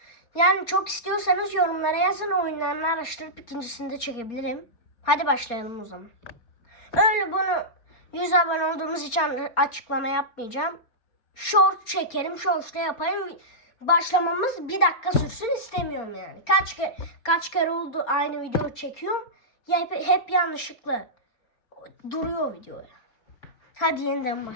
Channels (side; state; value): right; late; 4.3 ms